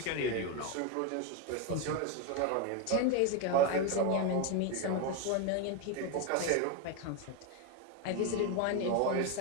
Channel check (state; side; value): different; both; correlation 0.02